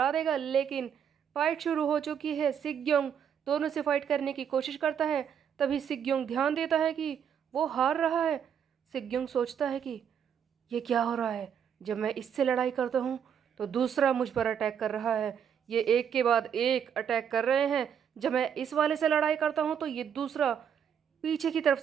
देगा। लेकिन फाइट शुरू हो चुकी है। सिग्योंग दोनों से फाइट करने की कोशिश करता है। तभी सिग्योंग ध्यान देता है कि वो हार रहा है। सिग्योंग सोचता है कि ये क्या हो रहा है? जब मैं इससे लड़ाई करता हूँ तो दूसरा मुझ पर अटैक कर रहा है। ये एक के बाद एक अटैक कर रहे हैं। जब मैं इस वाले से लड़ाई करता हूँ तो ये दूसरा पीछे की तरफ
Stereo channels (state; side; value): quieter; left; 8.2 dB